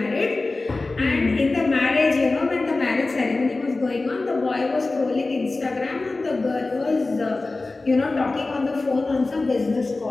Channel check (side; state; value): right; quieter; 3.3 dB